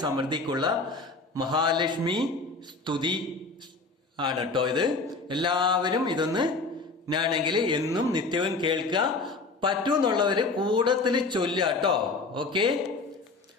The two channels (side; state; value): right; quieter; 3.7 dB